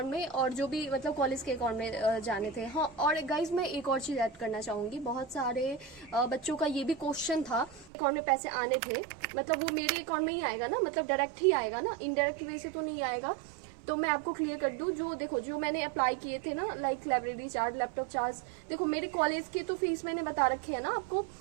में, और जो भी मतलब कॉलेज के अकाउंट में जाने थे। हाँ, और गाइज मैं एक और चीज़ ऐड करना चाहूँगी। बहुत सारे बच्चों का ये भी क्वेश्चन था, अकाउंट में पैसे आने थे, मतलब वो मेरे अकाउंट में ही आएगा ना, मतलब डायरेक्ट ही आएगा ना, इनडायरेक्ट वे से तो नहीं आएगा। तो मैं आपको क्लियर कर दूं, जो देखो जो मैंने अप्लाई किए थे ना, लाइब्रेरी चार्ज, लैपटॉप चार्ज, देखो मेरे कॉलेज के तो फीस मैंने बता रखे है ना आपको,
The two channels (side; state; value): left; drops out; at 7.9 s